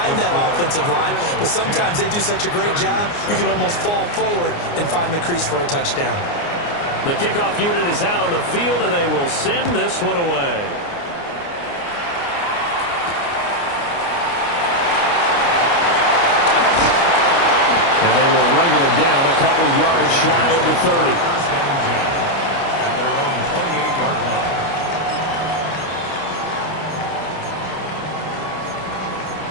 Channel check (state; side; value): late; right; 29 ms